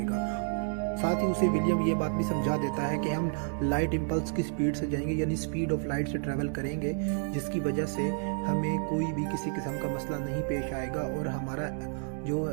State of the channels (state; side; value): silent; left; 58 dB below the other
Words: साथ ही उसे विलियम ये बात भी समझा देता है कि हम लाइट इम्पल्स की स्पीड से जाएंगे यानी स्पीड ऑफ लाइट से ट्रैवल करेंगे जिसकी वजह से हमें कोई भी किसी किस्म का मसला नहीं पेश आएगा और हमारा जो